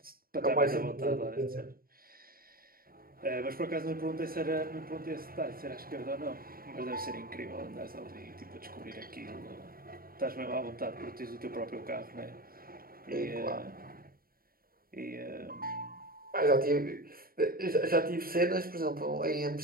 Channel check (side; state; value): left; late; 0.43 ms